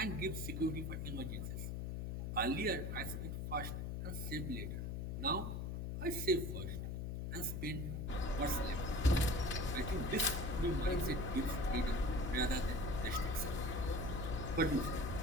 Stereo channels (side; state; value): left; noise; hum, 3 dB below the sound